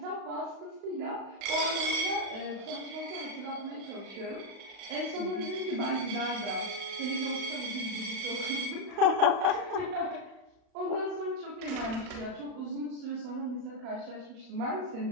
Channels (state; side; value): late; left; 35 ms